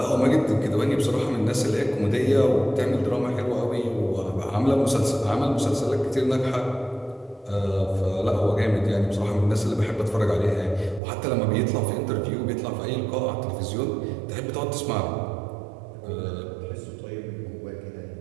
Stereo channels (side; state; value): left; drops out; at 11.0 s